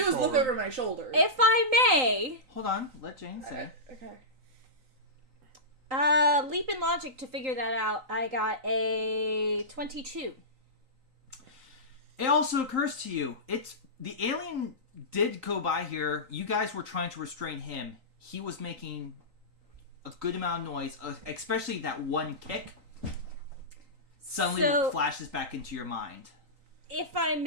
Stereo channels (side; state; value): left; late; 3.9 ms